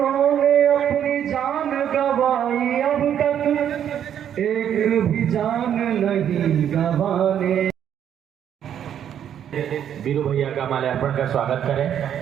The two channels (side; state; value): left; quieter; 9.5 dB